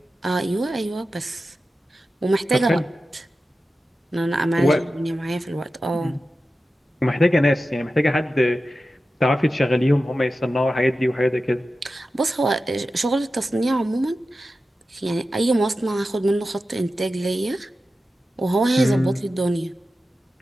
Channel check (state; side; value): normal; both; correlation 0.93